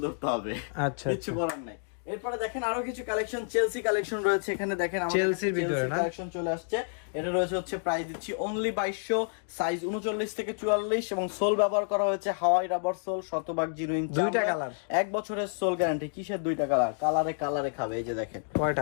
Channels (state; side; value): silent; right; digital silence